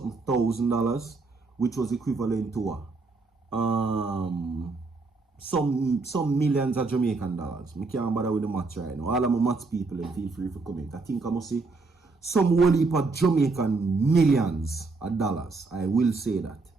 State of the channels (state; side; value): quieter; left; 3.8 dB